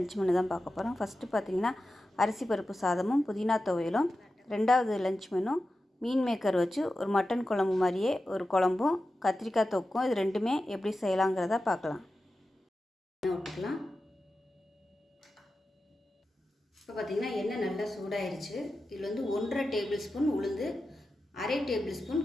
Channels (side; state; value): both; normal; correlation 0.92